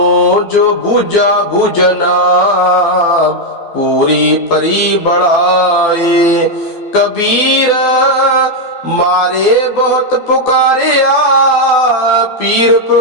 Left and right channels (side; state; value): right; late; 12 ms